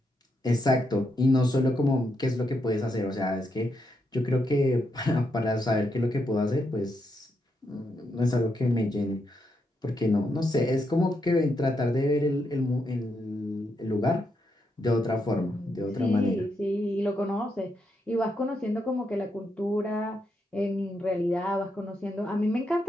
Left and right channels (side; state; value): both; normal; correlation 0.81